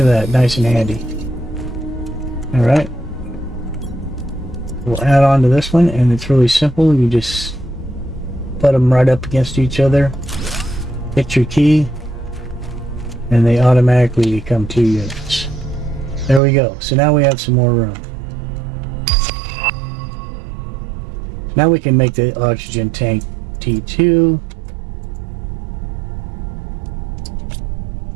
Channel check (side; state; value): left; drops out; at 16.4 s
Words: that, nice and handy. Alright. We'll add on to this one, and it's really simple. You just put them right up against each other, hit your key, and they automatically become 2 units. There we go. So now we have some more room. Now we can make the oxygen tank T2.